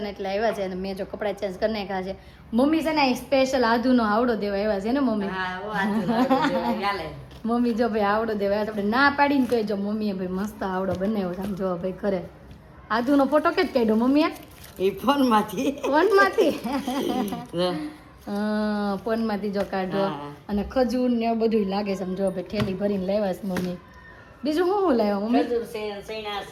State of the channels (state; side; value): identical; both; correlation 1.00